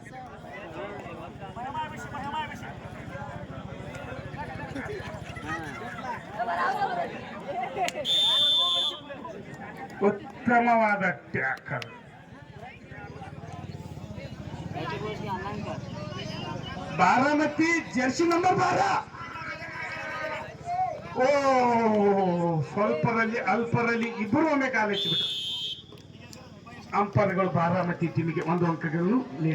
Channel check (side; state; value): both; identical; correlation 1.00